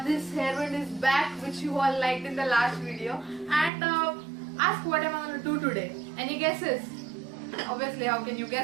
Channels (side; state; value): left; drops out; at 3.7 s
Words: this hairband is back, which you all liked in the last video. And ask what am I going to do today? Any guesses? Obviously, how can you